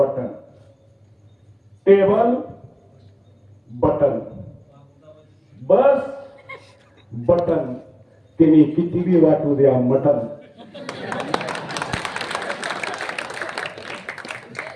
टेबल बटन, बस बटन, तिने कितीही वाटू द्या मटन.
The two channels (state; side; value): identical; both; correlation 1.00